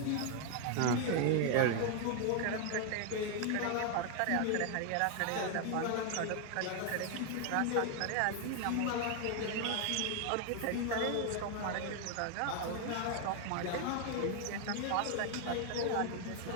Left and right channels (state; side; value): different; both; correlation 0.00